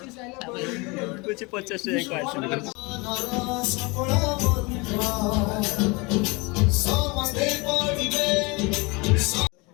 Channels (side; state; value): right; quieter; 27.0 dB